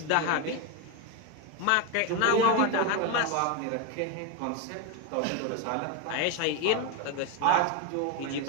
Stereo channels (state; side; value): different; both; correlation 0.02